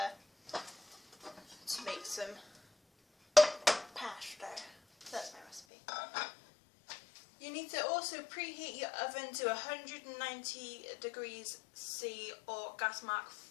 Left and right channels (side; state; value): right; drops out; at 5.6 s